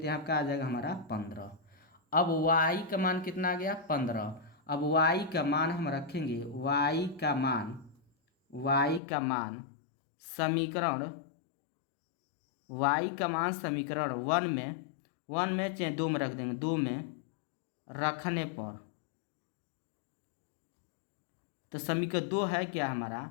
यहाँ क्या आ जाएगा हमारा 15। अब y का मान कितना आ गया, 15। अब y का मान हम रखेंगे, y का मान समीकरण समीकरण 1 में चाहे 2 में रख देंगे, 2 में रखने पर तो समीकरण 2 है क्या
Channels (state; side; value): drops out; right; at 9.0 s